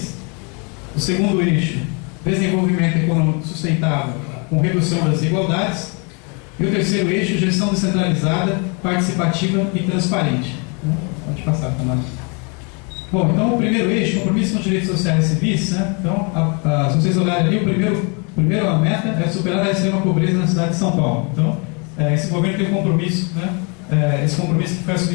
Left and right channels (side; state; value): right; quieter; 33.9 dB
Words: O segundo eixo, desenvolvimento econômico sustentável com redução das desigualdades. E o terceiro eixo, gestão descentralizada, participativa e transparente. Pode passar, Tamara. Bom, então o primeiro eixo, compromisso com os direitos sociais e civis, né? Então, se vocês olharem ali, a primeira meta é superar a extrema pobreza na cidade de São Paulo. Então, esse governo tem um compromisso, né? Esse compromisso que foi